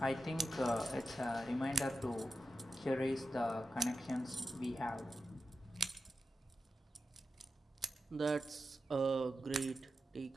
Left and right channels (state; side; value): normal; both; correlation 0.90